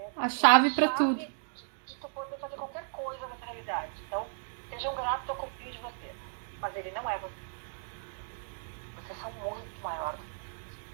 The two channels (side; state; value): left; silent; digital silence